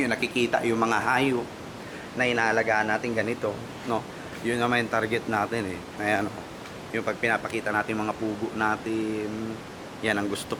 yung nakikita yung mga hayop na inaalagaan natin ganito. No? Yun naman yung target natin eh. Ayan, yung pag pinapakita natin mga pugo natin, yan ang gusto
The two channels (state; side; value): identical; both; correlation 1.00